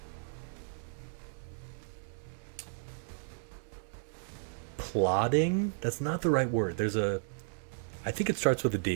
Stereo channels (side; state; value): left; silent; digital silence